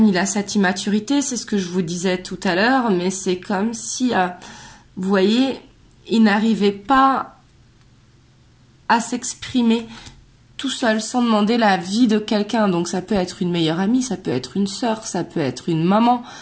il a cette immaturité, c'est ce que je vous disais tout à l'heure, mais c'est comme si, vous voyez, il n'arrivait pas à s'exprimer tout seul, sans demander l'avis de quelqu'un. Donc ça peut être une meilleure amie, ça peut être une sœur, ça peut être une maman,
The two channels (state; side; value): identical; both; correlation 1.00